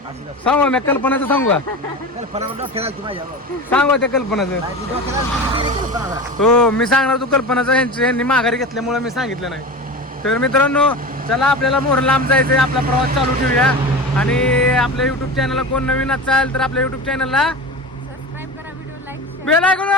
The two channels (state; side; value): normal; both; correlation 0.28